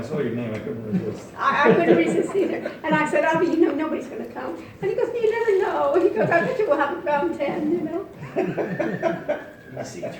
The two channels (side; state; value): both; identical; correlation 1.00